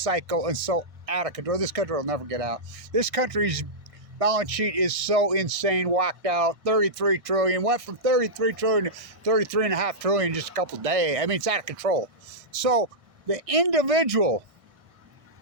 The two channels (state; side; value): late; left; 1.6 ms